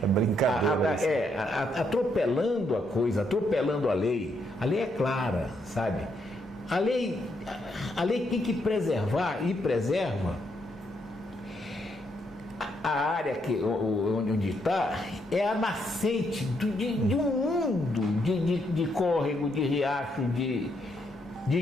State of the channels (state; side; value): normal; both; correlation 0.76